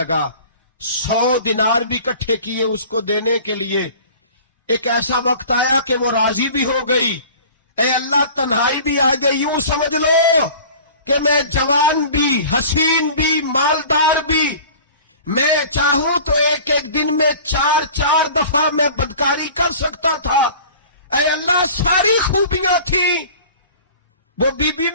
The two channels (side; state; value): both; inverted; correlation -0.43